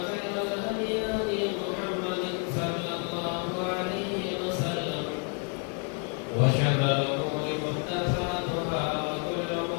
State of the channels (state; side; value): quieter; right; 38.0 dB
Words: خير الهدي هدي محمد صلى الله عليه وسلم وشر الأمور محدثاتها وكل